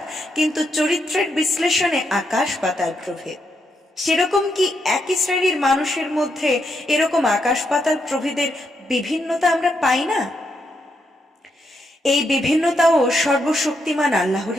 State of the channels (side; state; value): both; normal; correlation 0.80